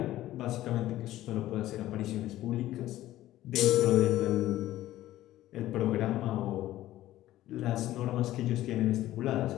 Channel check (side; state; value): right; quieter; 14.7 dB